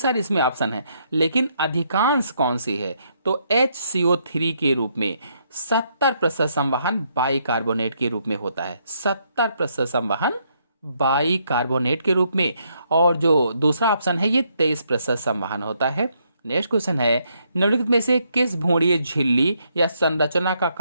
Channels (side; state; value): both; inverted; correlation -0.74